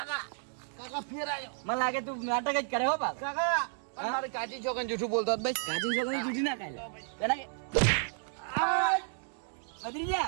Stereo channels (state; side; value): silent; left; digital silence